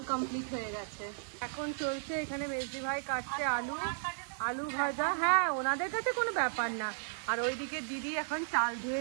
কমপ্লিট হয়ে গেছে। এখন চলছে এখানে মেজদি ভাই কাটছে আলু ভাজা। হ্যাঁ, ওনাদের কাছে কোনো ব্যাপার না। আর ওইদিকে দিদি এখন চাল ধুয়ে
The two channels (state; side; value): silent; left; 55 dB below the other